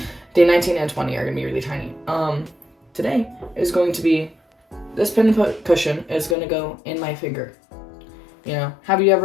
Day 19 and 20 are gonna be really tiny. Today is going to be, this pin cushion is gonna go in my finger. You know, have you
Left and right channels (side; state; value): right; drops out; at 6.4 s